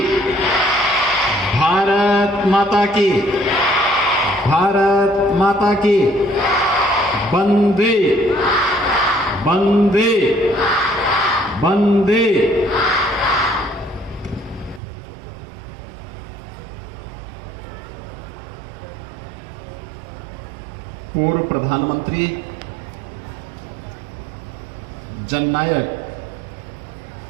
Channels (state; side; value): drops out; left; at 14.8 s